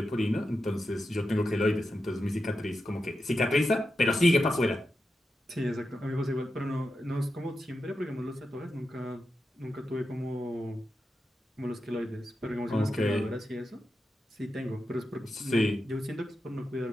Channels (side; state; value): both; normal; correlation 0.89